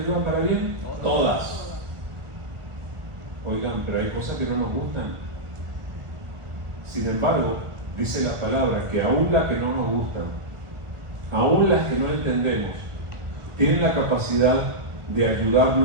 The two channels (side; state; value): left; late; 1.4 ms